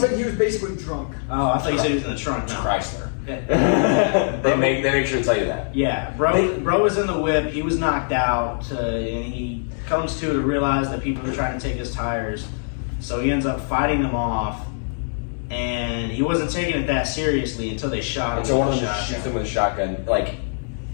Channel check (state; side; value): silent; right; 64 dB below the other